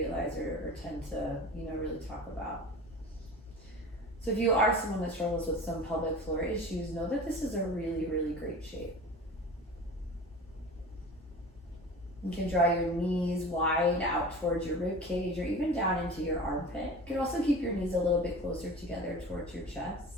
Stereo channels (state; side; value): normal; both; correlation 0.36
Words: or tend to, really talk about. So if you are someone that struggles with some pelvic floor issues, know that this is a really, really great shape. You can draw your knees wide out towards your rib cage or even down into your armpit. You can also keep your knees a little bit closer together towards your